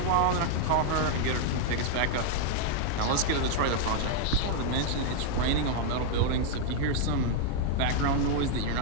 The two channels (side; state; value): both; different; correlation 0.00